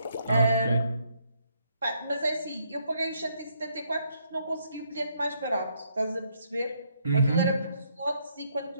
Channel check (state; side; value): inverted; both; correlation -0.73